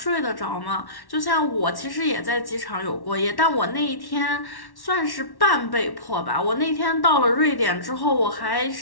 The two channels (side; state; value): right; late; 1.1 ms